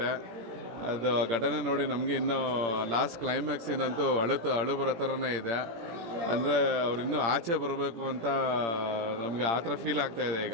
ಅದು ಘಟನೆ ನೋಡಿ ನಮಗೆ ಇನ್ನೂ ಲಾಸ್ಟ್ ಕ್ಲೈಮ್ಯಾಕ್ಸಿನಂತೂ ಅಳು ಬರೋ ಥರನೇ ಇದೆ. ಅಂದರೆ ಅವ್ರು ಇನ್ನೂ ಆಚೆ ಬರಬೇಕು ಅಂತ ನಮಗೆ ಆ ಥರ ಫೀಲ್ ಆಗ್ತಾಯಿದೆ ಈಗ.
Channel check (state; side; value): late; left; 17 ms